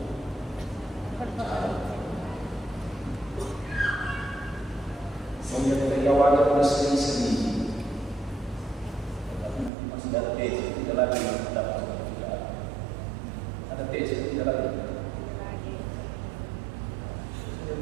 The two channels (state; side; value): drops out; left; at 9.7 s